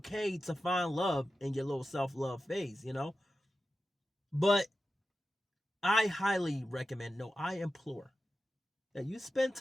to find love in your little self-love phase, you know? But I highly recommend, no, I implore that you spend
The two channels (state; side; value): normal; both; correlation 0.92